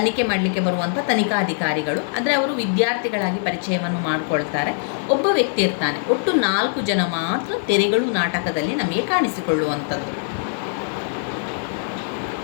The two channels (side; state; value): right; silent; digital silence